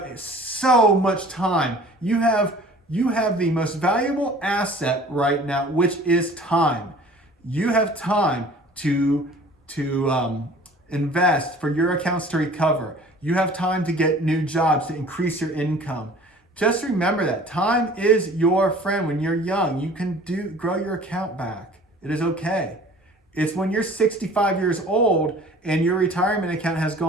so much time. You have the most valuable asset right now, which is time. You have time to invest for your accounts to recover. You have time to get new jobs, to increase your income. Just remember that time is your friend. When you're young, you can grow your account back. It is okay. It's when you're 65 years old and your retirement account has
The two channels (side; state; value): both; normal; correlation 0.47